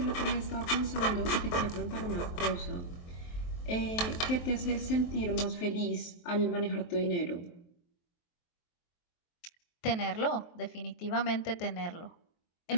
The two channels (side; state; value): right; late; 23 ms